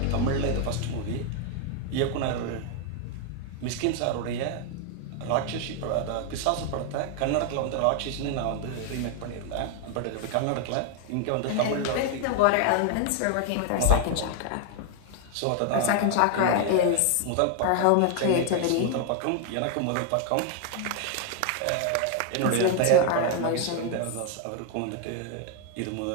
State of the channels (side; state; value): both; different; correlation 0.00